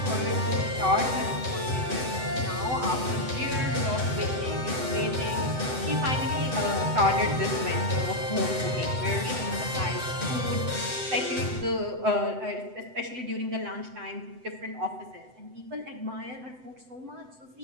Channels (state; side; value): late; left; 7.9 ms